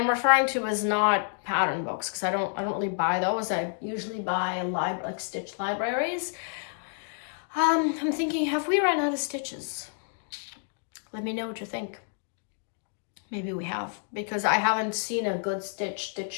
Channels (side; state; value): right; silent; digital silence